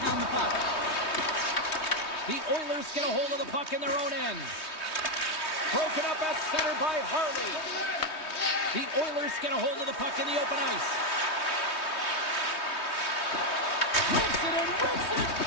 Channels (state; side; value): late; right; 3.2 ms